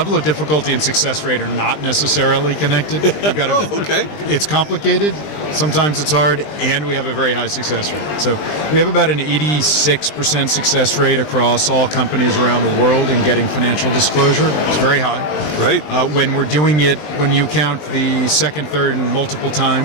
of difficulty and success rate are not necessarily connected. You've got to, okay. It's complicated, sometimes it's hard, and we have a very high success rate. So we have about an 86% success rate across all companies around the world in getting financial disclosure. It's very high. Right. When we're doing it, when you count the second, third, and multiple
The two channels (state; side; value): late; right; 20 ms